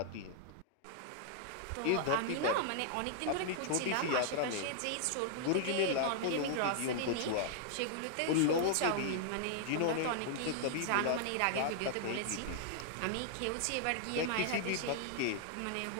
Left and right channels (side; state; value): both; different; correlation -0.01